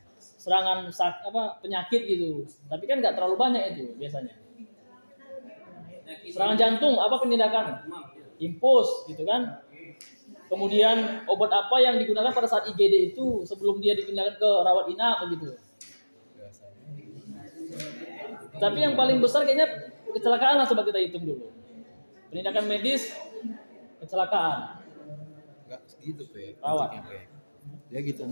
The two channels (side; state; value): both; inverted; correlation -1.00